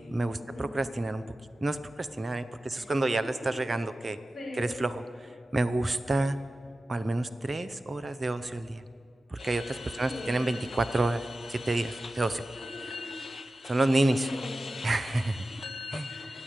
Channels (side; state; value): both; normal; correlation 0.95